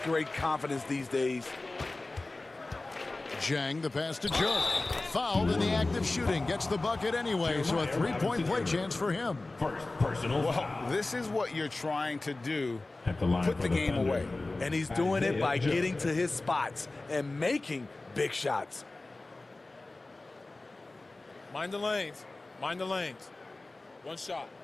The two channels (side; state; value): right; quieter; 3.1 dB